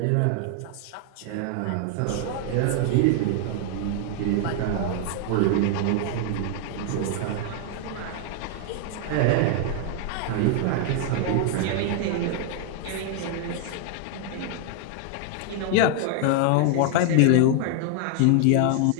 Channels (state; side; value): different; both; correlation 0.00